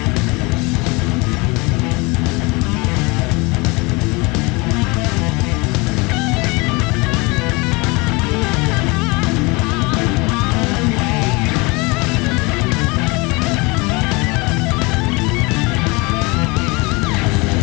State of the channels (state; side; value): quieter; right; 26.4 dB